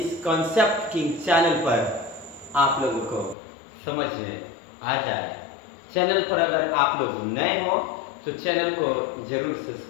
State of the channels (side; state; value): right; drops out; at 3.4 s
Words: कंसेप्ट की चैनल पर आप लोगों को समझ में आ जाए। चैनल पर अगर आप लोग नए हो तो चैनल को जरूर